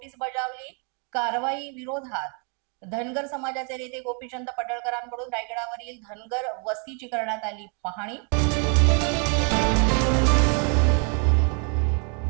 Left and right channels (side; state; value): left; quieter; 39.2 dB